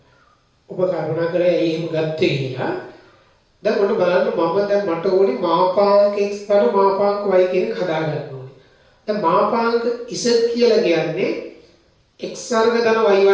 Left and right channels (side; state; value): both; identical; correlation 1.00